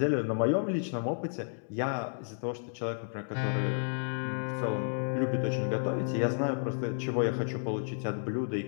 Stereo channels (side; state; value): right; silent; digital silence